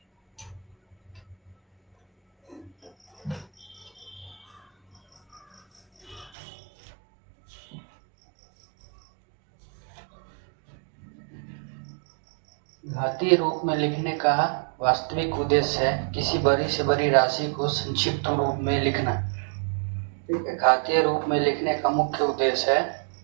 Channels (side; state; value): left; drops out; at 6.3 s